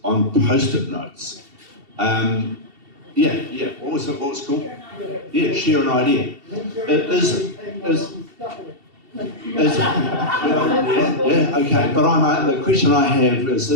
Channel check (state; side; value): late; left; 2.7 ms